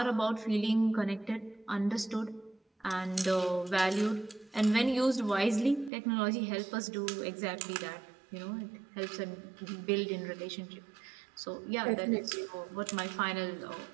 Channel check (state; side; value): drops out; left; at 5.9 s